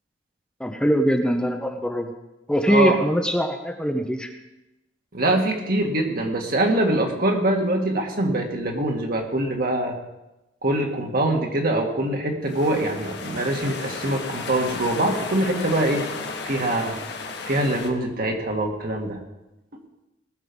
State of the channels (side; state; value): both; normal; correlation 0.44